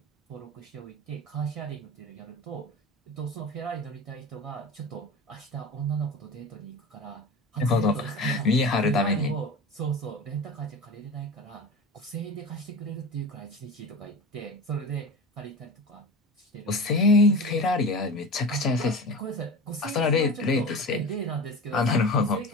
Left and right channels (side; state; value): both; normal; correlation 0.30